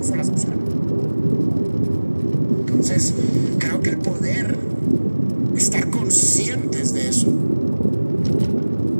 las opciones? Entonces, creo que el poder estar conscientes de eso,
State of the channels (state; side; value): inverted; both; correlation -1.00